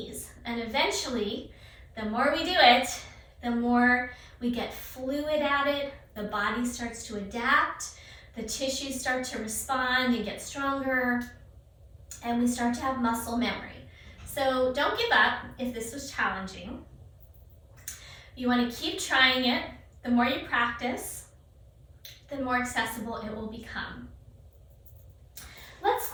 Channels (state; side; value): identical; both; correlation 1.00